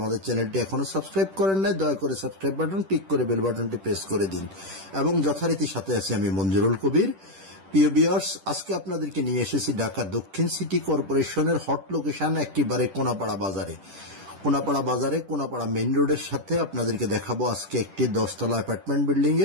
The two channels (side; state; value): left; late; 10 ms